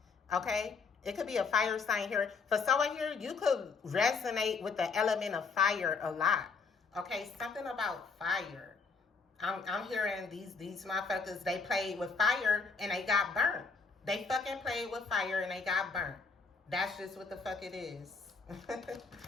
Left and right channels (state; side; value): quieter; right; 4.8 dB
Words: Okay? It could be a fire sign here. For someone here, you could resonate with the element of fire a lot. Okay, something about fire. I'm hearing these motherfuckers, they played with fire and they got burnt. They fucking played with fire and they got burnt. That's just what the fuck it is.